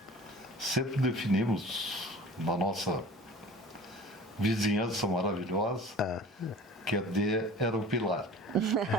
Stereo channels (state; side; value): normal; both; correlation 0.42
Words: sempre definimos na nossa vizinhança maravilhosa que a D era o pilar.